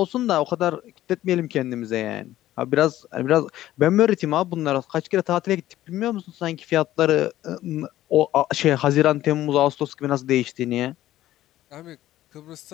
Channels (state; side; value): quieter; right; 14.1 dB